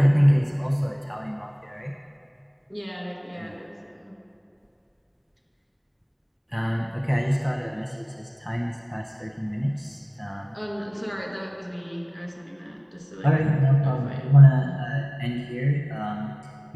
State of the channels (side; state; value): both; identical; correlation 1.00